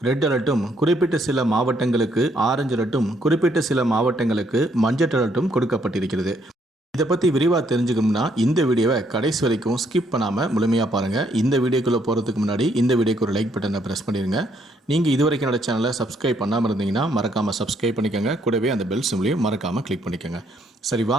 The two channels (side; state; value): both; normal; correlation 0.70